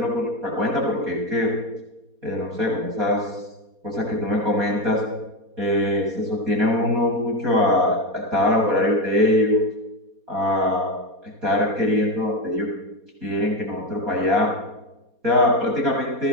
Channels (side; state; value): left; late; 4.2 ms